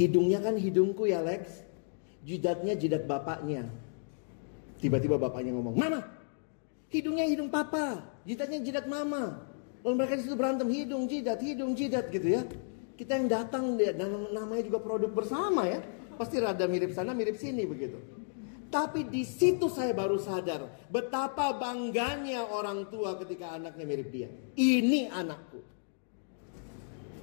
kan hidungku ya Lex. Jidatnya jidat bapaknya. Tiba-tiba bapaknya ngomong, "Mama, hidungnya hidung papa, jidatnya jidat mama." Lalu mereka di situ berantem hidung jidat gitu ya. Kita yang datang, namanya juga produk bersama ya. pasti rada mirip sana, mirip sini begitu. Tapi di situ saya baru sadar betapa bangganya orang tua ketika anaknya mirip dia. Ini anakku.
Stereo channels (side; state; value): right; silent; digital silence